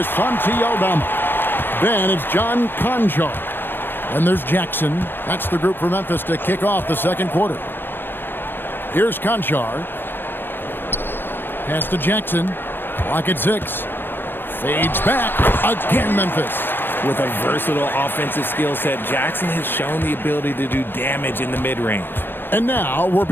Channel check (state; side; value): late; right; 0.099 ms